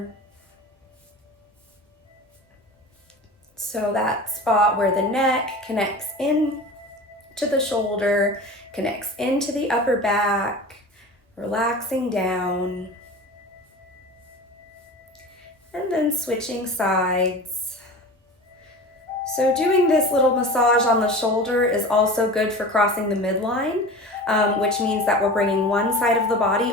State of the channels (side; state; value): both; normal; correlation 0.34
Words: So that spot where the neck connects in to the shoulder, connects into the upper back, relaxing down. And then switching sides. So doing this little massage on the shoulder is also good for crossing the midline, which means that we're bringing one side of the body